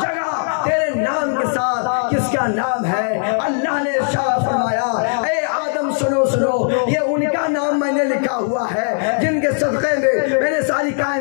تیرے نام کے ساتھ کس کا نام ہے؟ اللہ نے ارشاد فرمایا اے آدم سنو یہ ان کا نام میں نے لکھا ہوا ہے جن کے صدقے میں نے ساری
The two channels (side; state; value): right; silent; 67 dB below the other